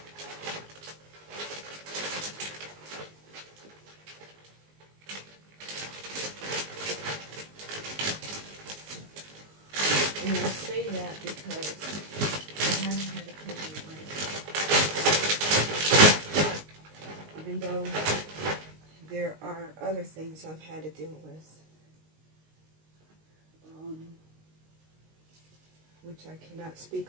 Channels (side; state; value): left; late; 19 ms